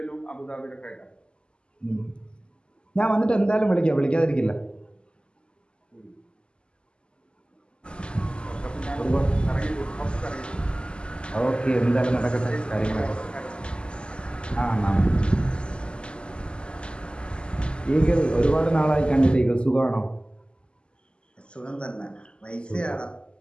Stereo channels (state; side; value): late; right; 0.050 ms